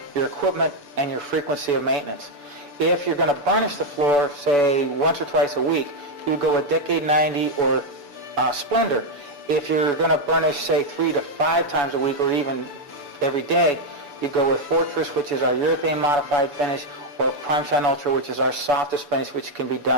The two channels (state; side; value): late; left; 6.9 ms